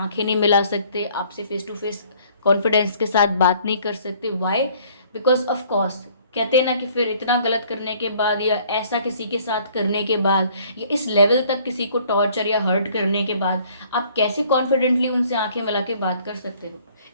नहीं मिला सकते, आपसे फेस टू फेस कॉन्फिडेंस के साथ बात नहीं कर सकते। वाई? बिकॉज ऑफ कोर्स कहते हैं ना कि फिर इतना गलत करने के बाद, या ऐसा किसी के साथ करने के बाद, या इस लेवल तक किसी को टॉर्चर या हर्ट करने के बाद आप कैसे कॉन्फिडेंटली उनसे आंखें मिला के बात कर सकते हो?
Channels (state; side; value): inverted; both; correlation -0.58